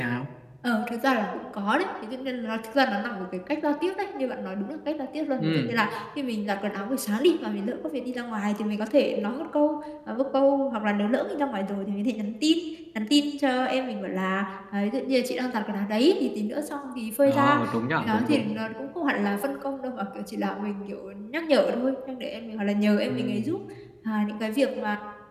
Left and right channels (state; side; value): identical; both; correlation 1.00